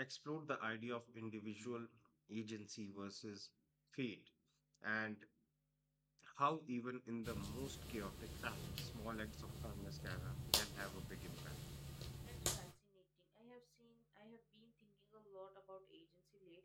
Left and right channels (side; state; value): both; identical; correlation 1.00